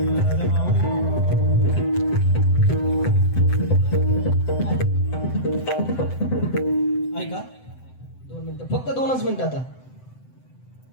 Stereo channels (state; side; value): late; right; 7.9 ms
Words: ऐका 2 मिनिटं, फक्त 2च मिनिटं. आता